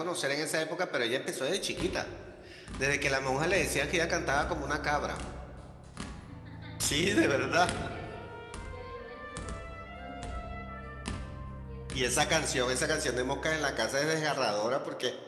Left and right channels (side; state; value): both; identical; correlation 1.00